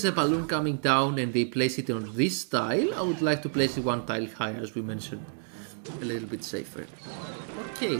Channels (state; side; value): silent; left; 58 dB below the other